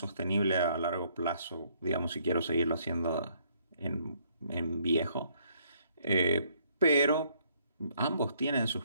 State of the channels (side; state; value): both; inverted; correlation -0.67